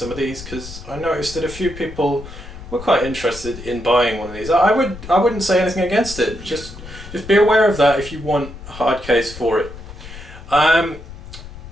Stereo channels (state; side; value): noise; left; rumble, 14 dB below the sound